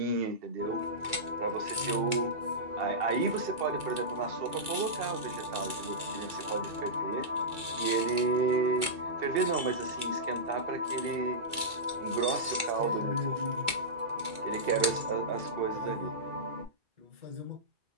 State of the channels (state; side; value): late; left; 2.3 ms